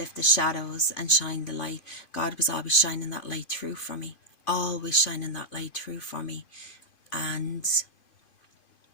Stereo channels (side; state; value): right; late; 2.5 ms